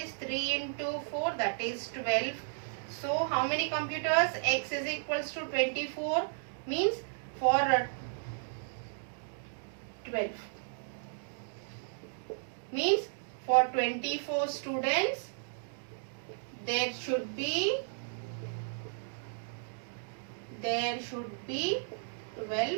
3 into 4, that is 12. So how many computers? X is equals to 24, means for 12. Means for 24 students, there should be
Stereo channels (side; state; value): left; silent; digital silence